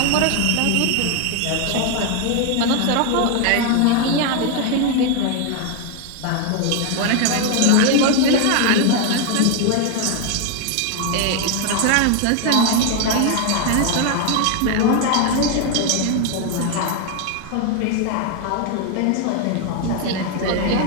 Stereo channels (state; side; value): different; both; correlation 0.01